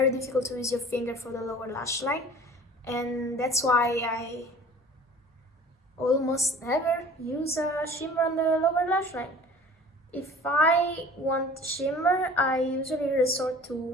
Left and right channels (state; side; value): normal; both; correlation 0.46